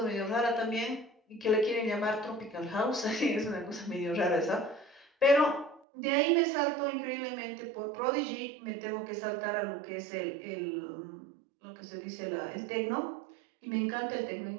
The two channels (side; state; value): left; drops out; at 5.9 s